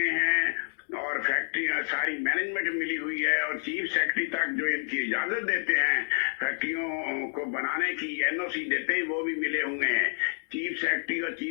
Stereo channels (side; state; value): right; silent; digital silence